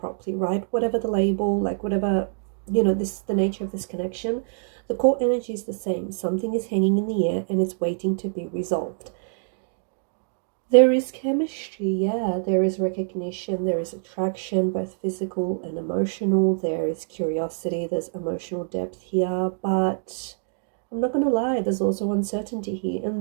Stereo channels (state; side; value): silent; left; digital silence